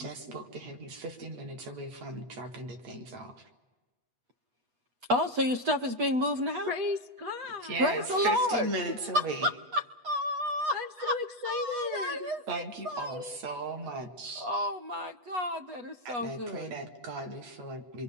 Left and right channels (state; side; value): late; left; 8.2 ms